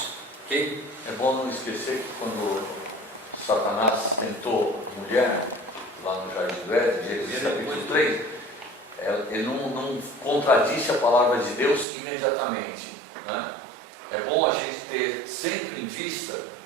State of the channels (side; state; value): left; drops out; at 11.9 s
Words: Ok? É bom não esquecer que quando Satanás tentou a mulher, lá no Jardim do Éden, Gênesis capítulo 3, ele não contradisse a palavra de Deus imediatamente. Né? É bom a gente ter sempre em vista